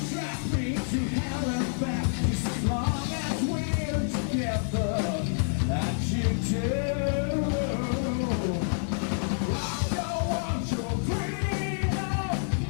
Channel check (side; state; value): right; silent; digital silence